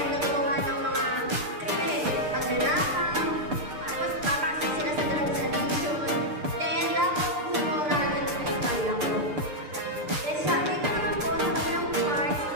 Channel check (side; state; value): left; late; 6.7 ms